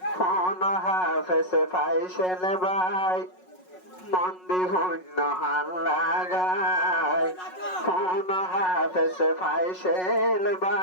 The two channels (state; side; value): late; right; 5.4 ms